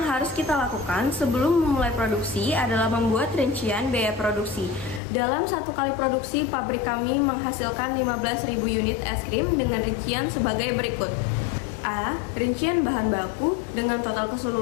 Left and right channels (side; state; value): right; drops out; at 5.0 s